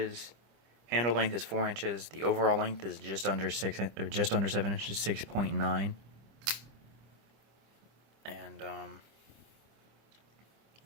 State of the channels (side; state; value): left; late; 25 ms